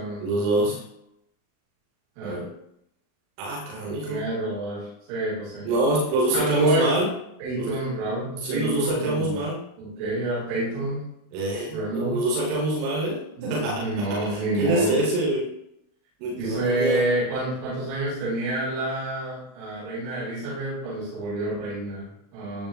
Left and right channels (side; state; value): left; late; 39 ms